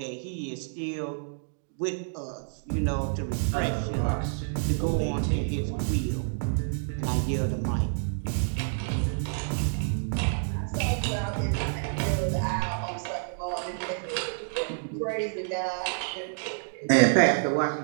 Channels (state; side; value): silent; left; digital silence